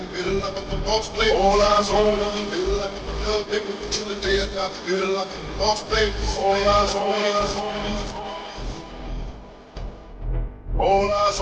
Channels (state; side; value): identical; both; correlation 1.00